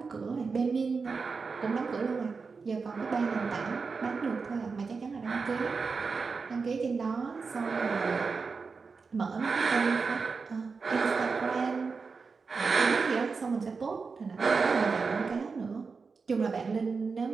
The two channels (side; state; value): left; quieter; 4.8 dB